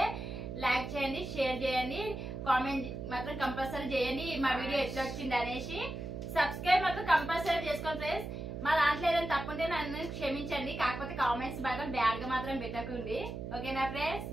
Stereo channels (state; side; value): noise; right; hum, 7 dB below the sound